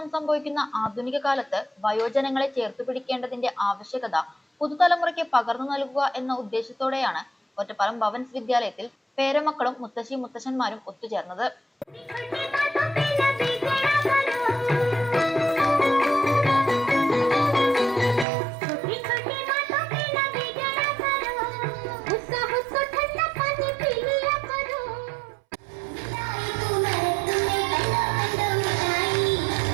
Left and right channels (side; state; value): left; drops out; at 18.2 s